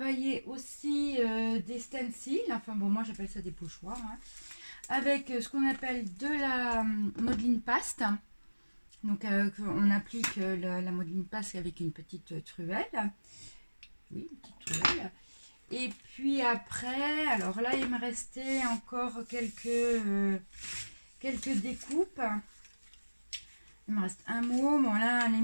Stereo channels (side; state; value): both; inverted; correlation -1.00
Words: aussi des stencils, enfin bon, moi j'appelle ça des pochoirs, hein, avec ce qu'on appelle de la modeline paste. Donc on applique la modeline paste avec une petite truelle. Oui, une petite truelle. Et puis après, alors là il me restait encore quelques découpes. Il me reste un mot. Bon là, à la